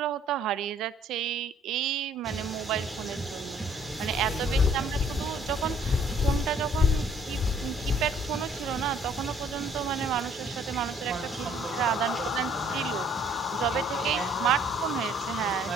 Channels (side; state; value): both; normal; correlation 0.61